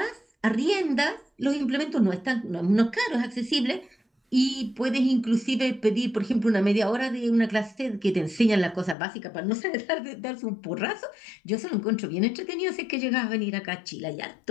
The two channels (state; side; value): drops out; right; at 9.0 s